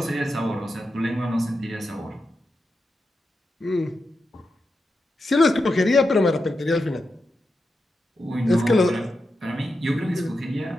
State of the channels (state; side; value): normal; both; correlation 0.88